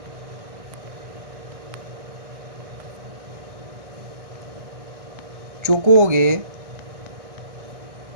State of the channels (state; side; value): late; left; 1.6 ms